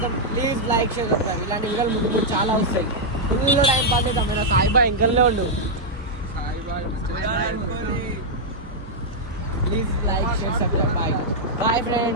ప్లీజ్ లైక్ షేర్ సబ్స్క్రైబ్. ఇలాంటి వీడియోలు ముందు చాలా వస్తాయి. ఫుల్ టైం పాస్ చేద్దాం. సాయి బాయ్ ఇంకల్నే ఉండు. Please like share subscribe. Bye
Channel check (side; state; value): both; normal; correlation -0.04